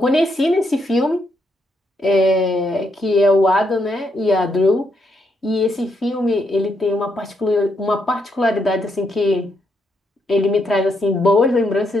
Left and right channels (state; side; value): normal; both; correlation 0.78